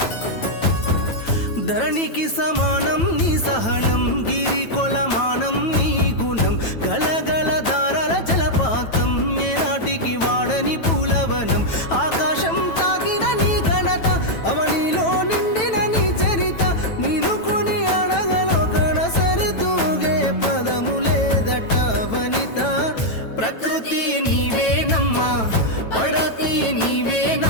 ధరణికి సమానం నీ సహనం, గిరి కొలమానం నీ గుణం, గలగల దారాల జలపాతం, ఏనాటికి వాడని పూలవనం. ఆకాశం తాకిన నీ ఘనత, అవనిలో నిండిన నీ చరిత, నీను కొని అడగలో కనసరితూగే పదము లేదట వనిత. ప్రకృతి నీవేనమ్మా, పడతి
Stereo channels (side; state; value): right; late; 9.1 ms